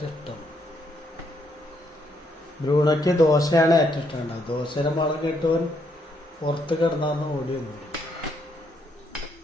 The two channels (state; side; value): normal; both; correlation 0.74